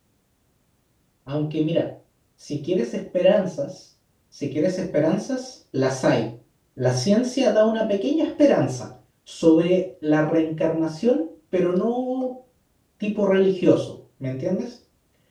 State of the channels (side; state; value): both; identical; correlation 1.00